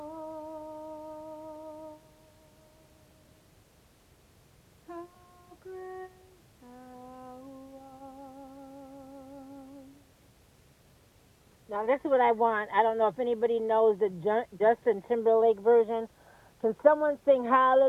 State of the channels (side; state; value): both; identical; correlation 1.00